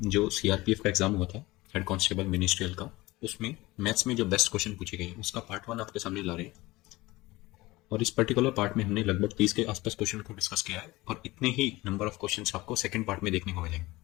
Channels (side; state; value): right; quieter; 20.0 dB